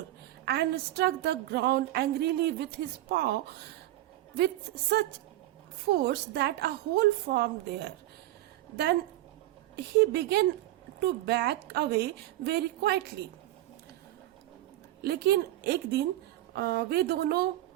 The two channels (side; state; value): left; quieter; 15.5 dB